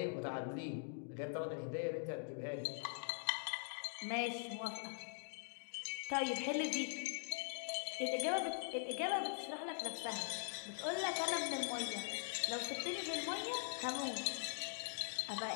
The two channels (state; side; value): silent; right; digital silence